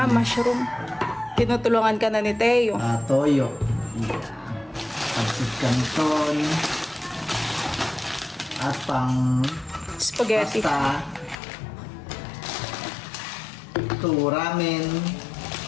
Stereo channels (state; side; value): drops out; right; at 11.4 s